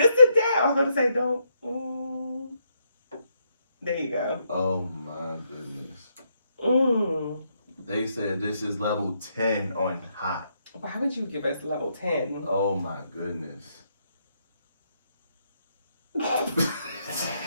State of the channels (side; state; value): both; inverted; correlation -0.77